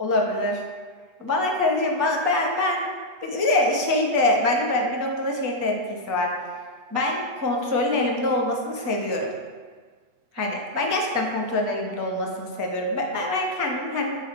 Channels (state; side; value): late; left; 8.1 ms